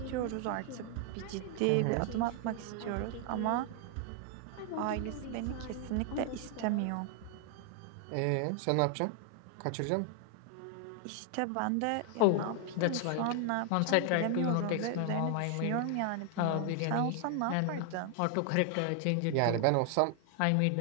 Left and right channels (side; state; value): both; different; correlation 0.00